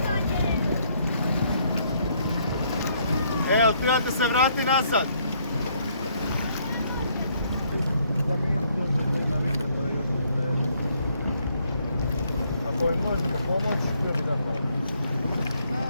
to nje! Evo, trebate se vrati nazad. Ako im možete pomoći, htio bi da pomoći.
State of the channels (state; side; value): inverted; both; correlation -0.69